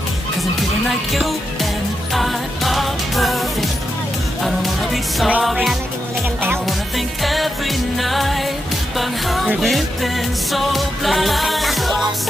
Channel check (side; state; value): both; normal; correlation 0.86